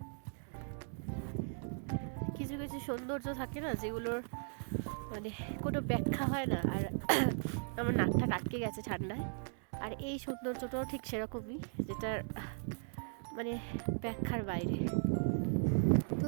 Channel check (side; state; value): left; silent; 53 dB below the other